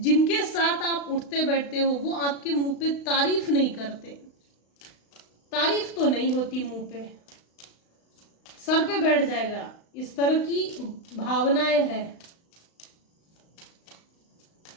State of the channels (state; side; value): late; right; 35 ms